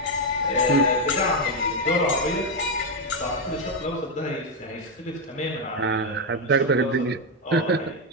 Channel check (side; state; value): both; normal; correlation 0.04